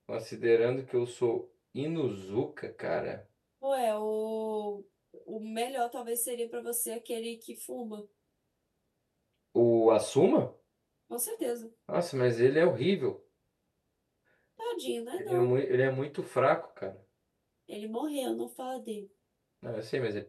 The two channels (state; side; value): identical; both; correlation 1.00